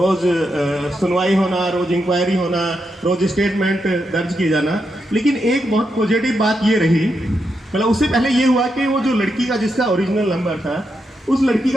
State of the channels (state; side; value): normal; both; correlation 0.84